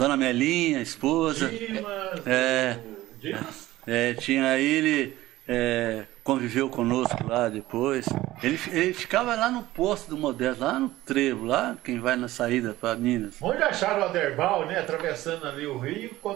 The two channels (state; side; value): quieter; left; 16.6 dB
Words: Melinha, a esposa. Dimas? Tinha ele, conviveu conosco lá depois. Ele ficava lá no posto do Modesto, lá no Trevo, lá quem vai na saída para Minas. Onde acharam o Aderbal, né? Atravessando ali o Rio,